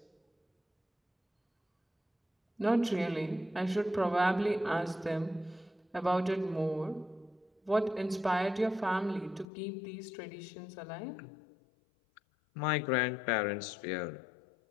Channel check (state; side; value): drops out; right; at 9.5 s